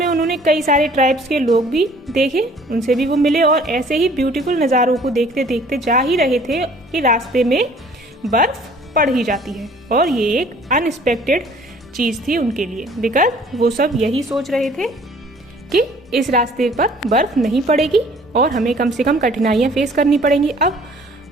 उन्होंने कई सारे ट्राइब्स के लोग भी देखे, उनसे भी वो मिले और ऐसे ही ब्यूटीफुल नज़ारों को देखते देखते जा ही रहे थे कि रास्ते में बर्फ पड़ ही जाती है. और ये एक अनएक्सपेक्टेड चीज़ थी उनके लिए, बिकॉज वो सब यही सोच रहे थे कि इस रास्ते पर बर्फ नहीं पड़ेगी और हमें कम से कम कठिनाइयाँ फेस करनी पड़ेंगी. अब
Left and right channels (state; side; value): normal; both; correlation 0.55